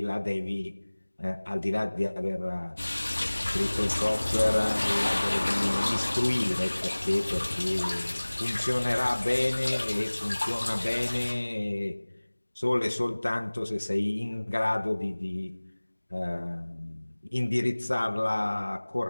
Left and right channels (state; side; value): inverted; both; correlation -1.00